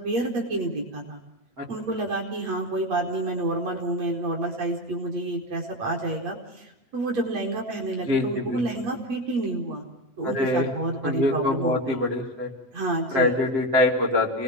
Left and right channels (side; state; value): left; late; 8.4 ms